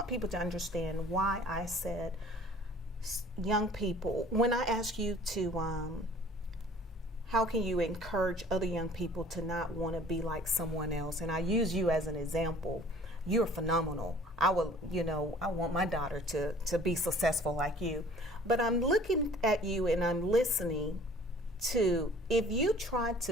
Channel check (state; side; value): normal; both; correlation 0.50